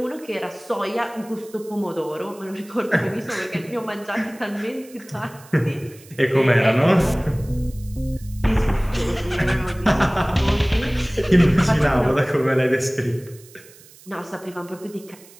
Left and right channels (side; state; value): right; noise; hiss, 23 dB below the sound